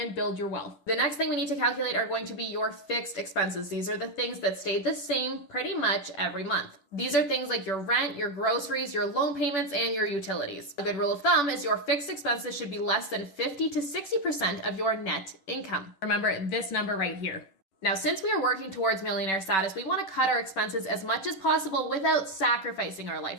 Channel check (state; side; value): late; right; 10 ms